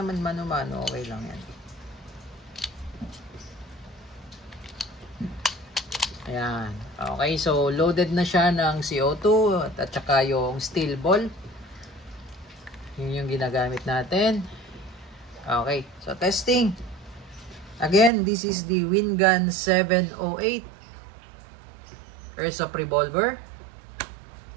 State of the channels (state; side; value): drops out; left; at 18.1 s